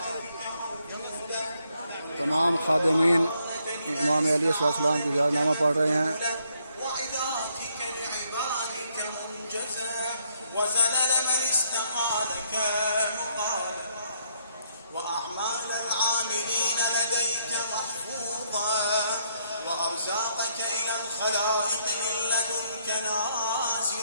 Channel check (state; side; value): inverted; both; correlation -0.72